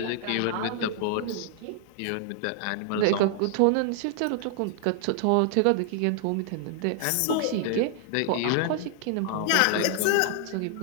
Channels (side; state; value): both; different; correlation 0.00